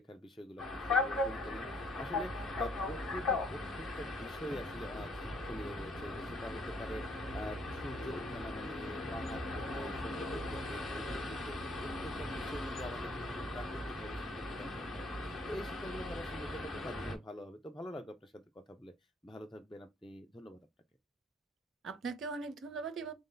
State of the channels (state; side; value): normal; both; correlation 0.64